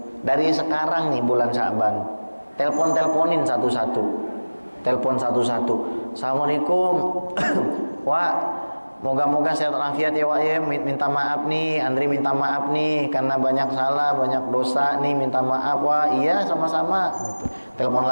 Dari sekarang nih bulan Sya'ban, teleponin satu-satu. Telepon satu-satu. Assalamualaikum. Wah, moga-moga sehat walafiat ya Wak ya. Minta maaf nih, Andri minta maaf nih karena banyak salah, banyak dosa nih, minta maaf Wak. Iya, sama-sama. Gitu. Telepon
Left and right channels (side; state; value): both; inverted; correlation -1.00